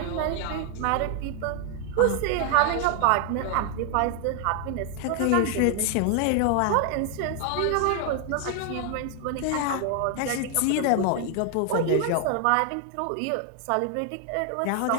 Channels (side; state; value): both; different; correlation 0.00